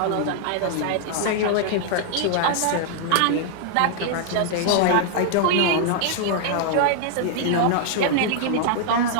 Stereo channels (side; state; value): both; different; correlation 0.00